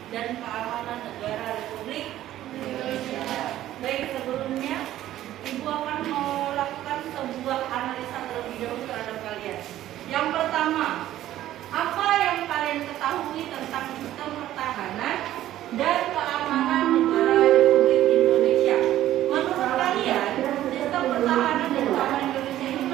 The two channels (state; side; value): quieter; left; 13.4 dB